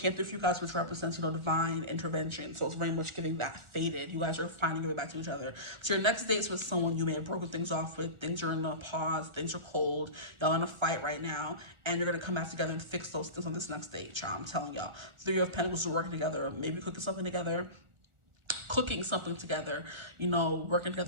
through for you guys, which represents, you know, divine intervention. So it's very much giving that faded. You guys are finally giving back to each other. So your next date's with someone you may have broken things off with. Things are in a pause. Things are cold. Y'all in a fight right now. And you're going to come back together and fix those things on this next date, child. I'm telling y'all. 3 of Pentacles are working together. Maybe cooking something together. You know, working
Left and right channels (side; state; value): left; late; 1.4 ms